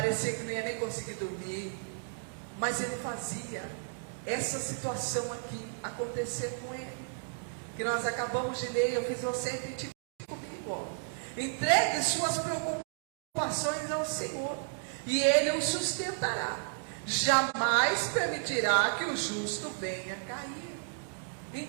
que não ia nem conseguir dormir, mas ele fazia essa situação aqui acontecer com ele, que nós acabamos de ler. Eu fiz você repetir comigo, ó. Entregue suas preocupações ao Senhor e Ele o sustentará. Jamais permitirá que o justo venha cair.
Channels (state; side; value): silent; left; digital silence